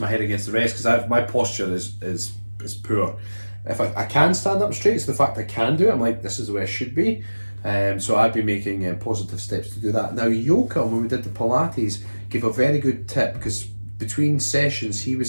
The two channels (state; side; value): inverted; both; correlation -1.00